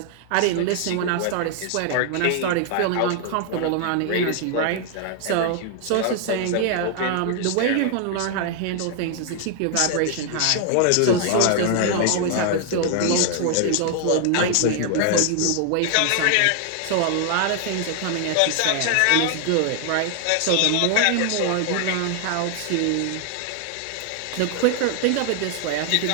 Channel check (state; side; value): different; both; correlation 0.00